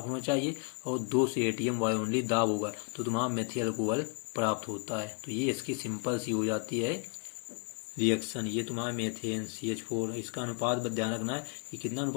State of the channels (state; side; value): quieter; right; 35.1 dB